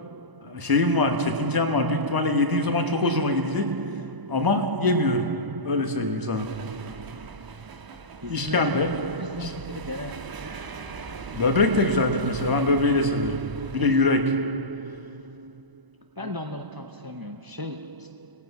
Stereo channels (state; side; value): late; left; 1.0 ms